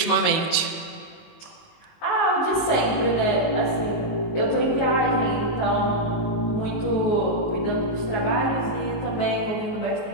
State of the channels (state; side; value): late; right; 19 ms